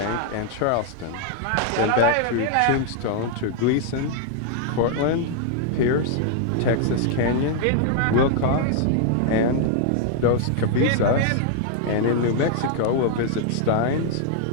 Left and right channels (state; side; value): different; both; correlation 0.00